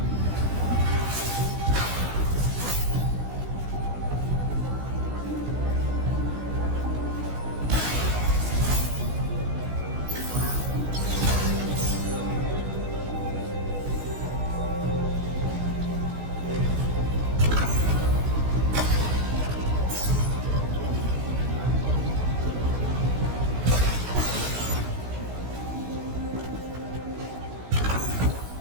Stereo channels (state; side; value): late; left; 16 ms